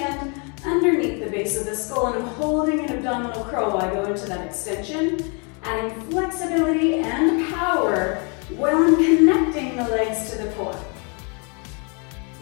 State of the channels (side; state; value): right; quieter; 35.3 dB